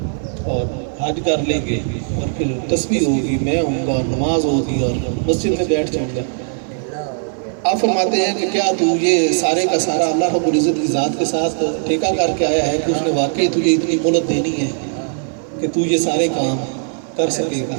اور حج کر لیں گے اور پھر تسبیح ہوگی، میں ہوں گا، نماز ہوگی اور مسجد میں بیٹھ جاؤں گا۔ آپ فرماتے ہیں کہ کیا تو یہ سارے کا سارا اللہ رب العزت کی ذات کے ساتھ ٹھیکہ کر کے آیا ہے کہ اس نے واقعی تجھے اتنی مہلت دینی ہے کہ تو یہ سارے کام کر سکے گا؟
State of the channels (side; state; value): left; silent; 63 dB below the other